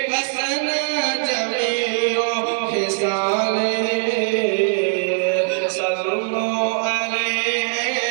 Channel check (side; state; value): left; silent; digital silence